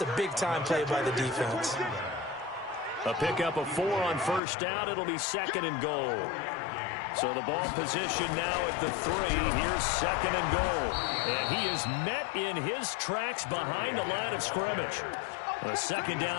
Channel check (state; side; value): drops out; right; at 4.4 s